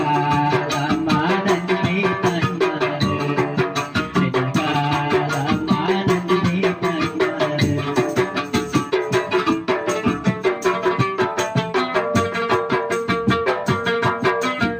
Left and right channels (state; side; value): identical; both; correlation 1.00